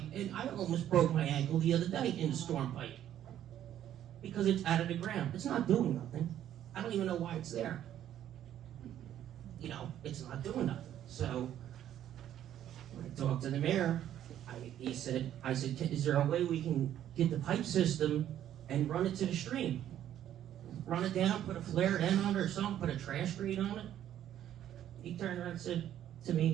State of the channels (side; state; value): left; quieter; 11.2 dB